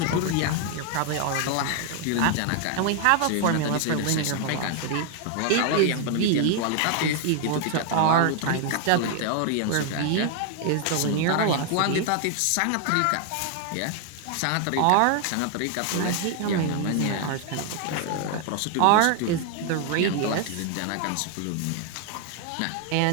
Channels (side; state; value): both; different; correlation 0.00